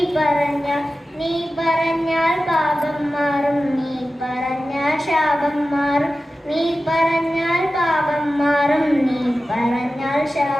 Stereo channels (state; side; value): normal; both; correlation 0.94